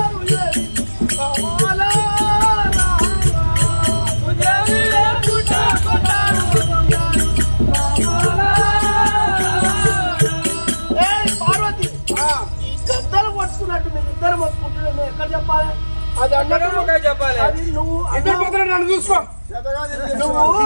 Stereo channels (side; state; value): both; inverted; correlation -1.00